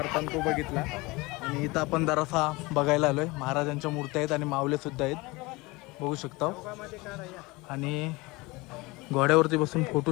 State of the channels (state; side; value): quieter; right; 23.4 dB